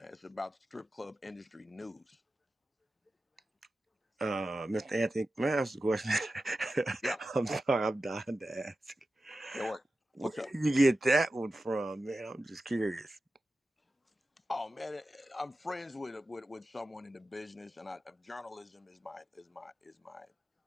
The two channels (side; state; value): both; normal; correlation 0.93